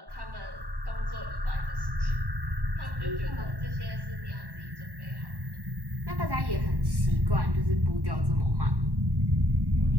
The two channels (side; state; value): left; late; 1.1 ms